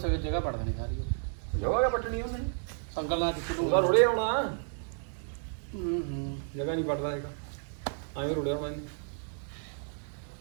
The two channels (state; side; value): silent; left; 55 dB below the other